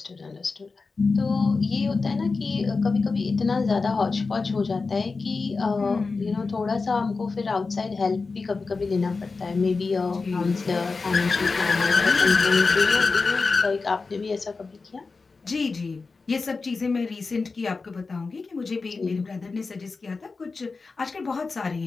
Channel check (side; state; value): right; quieter; 4.2 dB